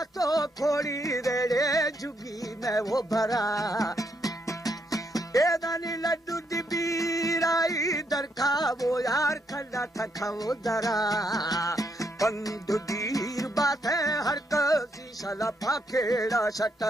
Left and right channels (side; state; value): both; normal; correlation 0.76